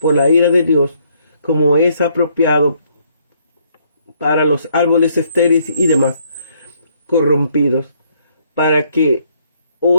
la ira de Dios, como es apropiado para los árboles estériles y demás corrompidos. Para que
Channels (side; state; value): both; inverted; correlation -0.69